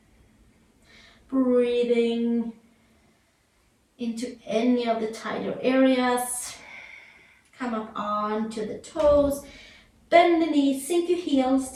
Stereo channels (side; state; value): both; identical; correlation 1.00